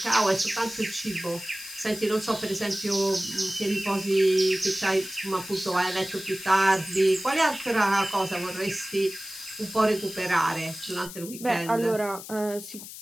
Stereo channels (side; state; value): left; noise; hiss, 13 dB below the sound